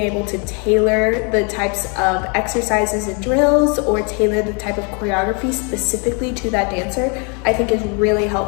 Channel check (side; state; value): right; quieter; 35.0 dB